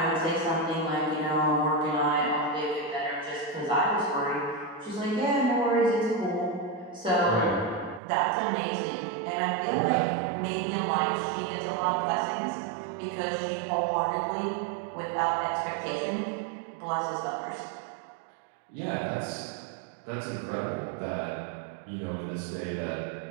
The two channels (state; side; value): drops out; left; at 8.0 s